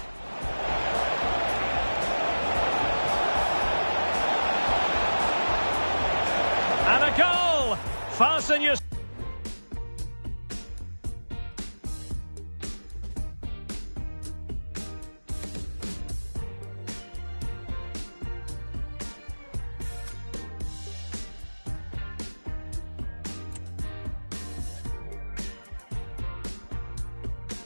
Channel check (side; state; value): both; inverted; correlation -1.00